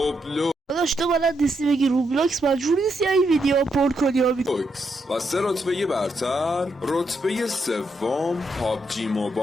داداش تو بلد نیستی بگی روبلاکس، مجبور نیستی این ویدیو پر کنی و سه رتبه برتر رتبه سوم پابجی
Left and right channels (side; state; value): both; normal; correlation 0.80